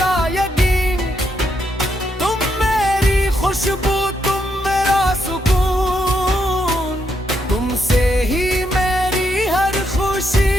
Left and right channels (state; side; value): normal; both; correlation 0.79